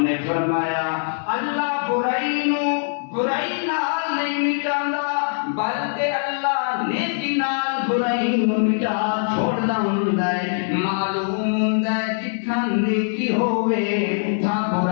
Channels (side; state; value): right; silent; 64 dB below the other